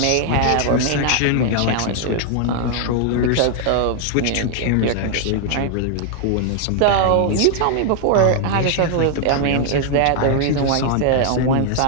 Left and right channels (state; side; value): different; both; correlation 0.00